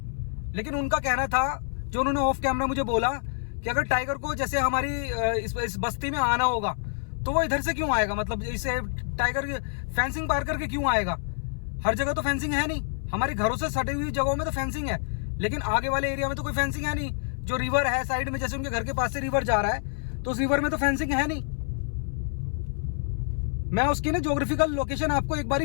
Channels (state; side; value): silent; right; 60 dB below the other